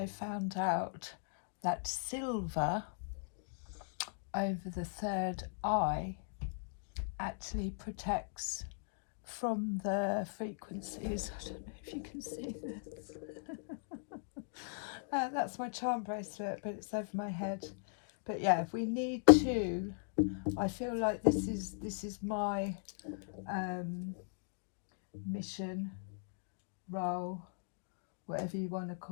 found out that silver over the third eye actually protects from the frequencies. I don't know if you can see this. That's my charm bracelet, but it's over my head. But yeah, if we need to, I feel like this is my mission, role, whatever you want to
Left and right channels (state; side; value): silent; right; digital silence